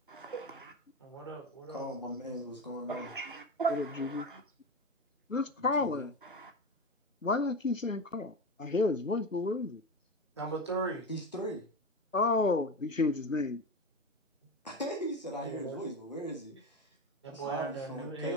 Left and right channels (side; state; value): both; normal; correlation 0.21